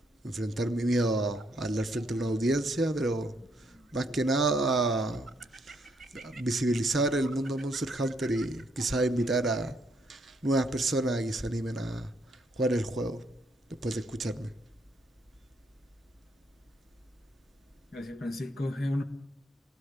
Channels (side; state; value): both; normal; correlation 0.73